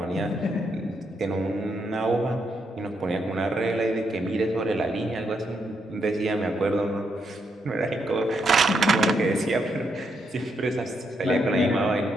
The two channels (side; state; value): both; normal; correlation 0.79